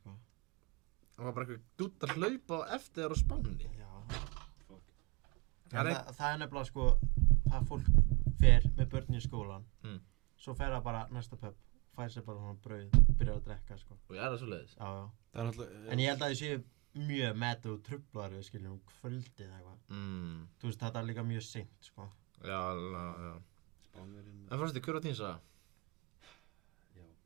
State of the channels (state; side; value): quieter; left; 26.6 dB